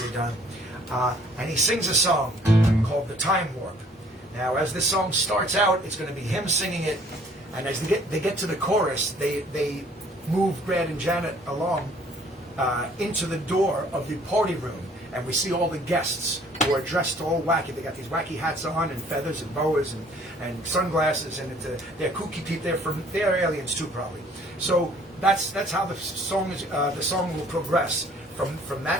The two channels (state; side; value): normal; both; correlation 0.57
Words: done. And he sings a song called "The Time Warp." Now, as this song starts out, it's going to be him singing it, and as they get to the chorus, they move Brad and Janet along into the door of the party room. And we see all the guests who are dressed all wacky. They got these wacky hats on and feathers and boas and sunglasses, and they're kooky people. They're aliens too, probably. So that's how the song will progress from